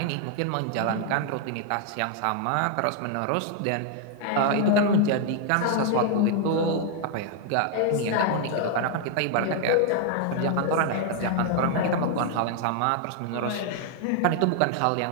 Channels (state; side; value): different; both; correlation 0.00